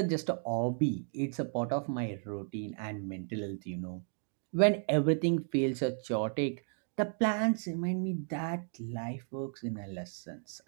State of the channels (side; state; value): left; silent; 55 dB below the other